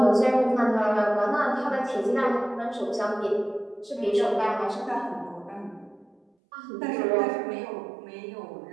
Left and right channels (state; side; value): drops out; left; at 6.2 s